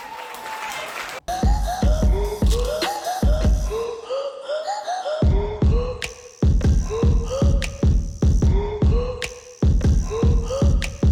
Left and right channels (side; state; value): both; identical; correlation 1.00